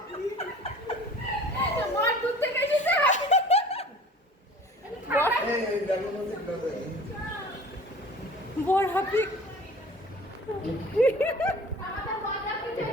বর দূর থেকে এসেছে। বর হাপি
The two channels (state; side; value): normal; both; correlation 0.44